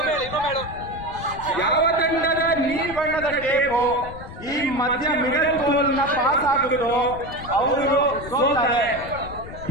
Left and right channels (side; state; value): left; noise; rumble, 14 dB below the sound